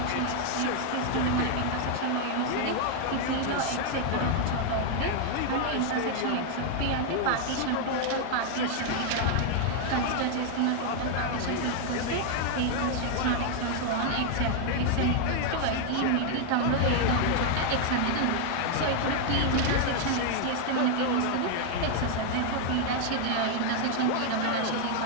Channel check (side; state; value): both; different; correlation 0.00